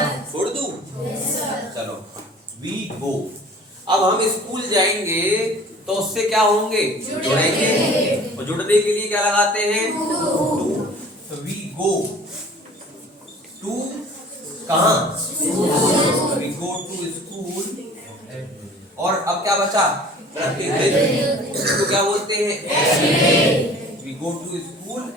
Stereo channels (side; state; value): both; normal; correlation 0.47